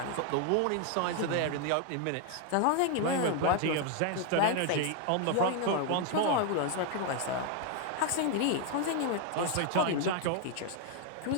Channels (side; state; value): both; different; correlation 0.00